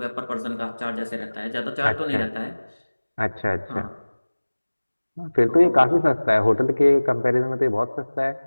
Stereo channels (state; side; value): inverted; both; correlation -1.00